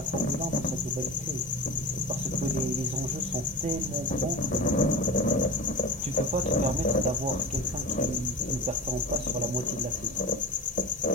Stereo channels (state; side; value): normal; both; correlation 0.28